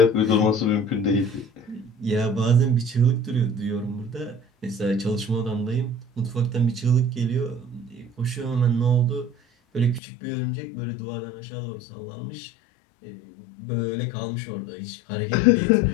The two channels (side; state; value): right; drops out; at 10.0 s